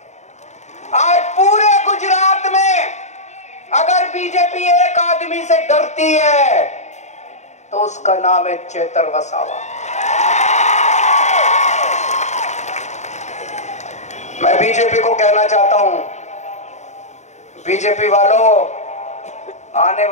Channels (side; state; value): right; late; 0.34 ms